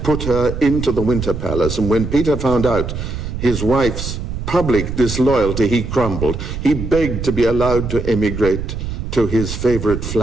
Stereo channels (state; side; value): noise; right; rumble, 6 dB below the sound